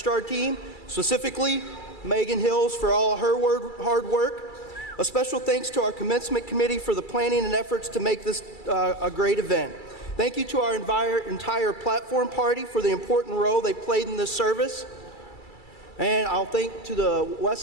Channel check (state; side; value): late; right; 2.3 ms